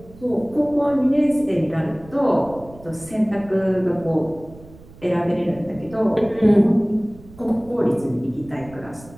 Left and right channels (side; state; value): right; noise; rumble, 21 dB below the sound